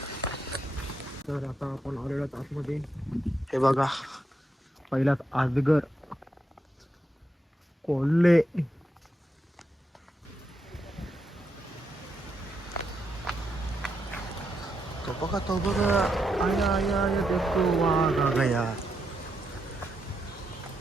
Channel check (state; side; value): normal; both; correlation 0.82